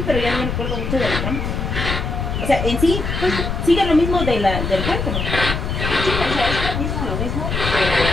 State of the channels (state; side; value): noise; left; rumble, 3 dB below the sound